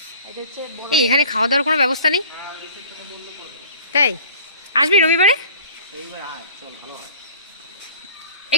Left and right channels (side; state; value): both; inverted; correlation -0.47